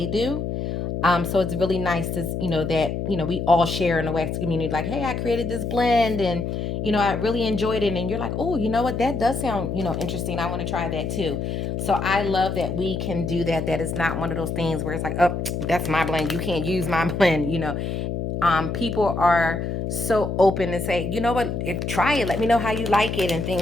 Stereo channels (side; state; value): left; noise; hum, 3 dB below the sound